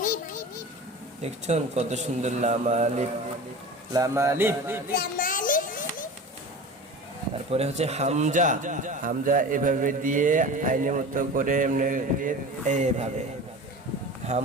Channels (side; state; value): both; normal; correlation 0.34